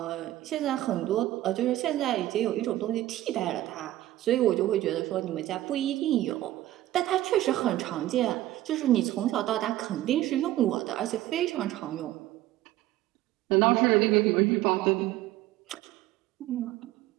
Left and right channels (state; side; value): quieter; left; 14.9 dB